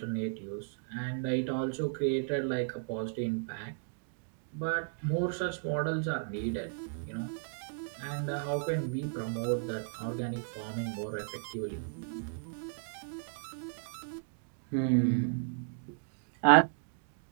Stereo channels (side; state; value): left; silent; digital silence